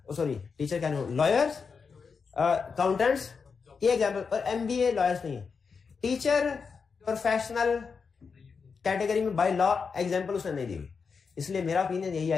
सॉरी टीचर क्या नहीं, लॉयर्स, अकाउंटेंट्स, ये एग्जाम्पल, और एमबीए लॉयर्स नहीं है। टीचर प्रोफेशनल कैटेगरी में बाय लॉ एग्जाम्पल उसने नहीं दी हुई, इसलिए मेरा ओपिनियन यही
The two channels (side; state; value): right; quieter; 5.5 dB